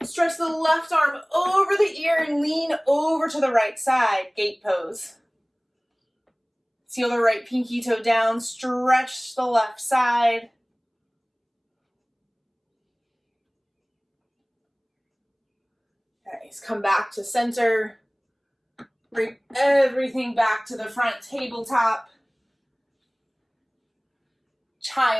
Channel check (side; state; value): both; identical; correlation 1.00